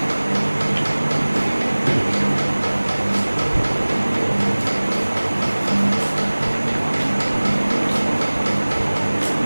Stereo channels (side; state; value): both; inverted; correlation -1.00